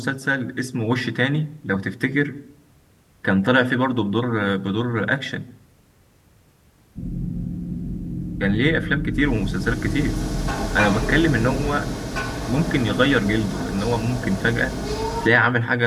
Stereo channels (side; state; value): both; identical; correlation 1.00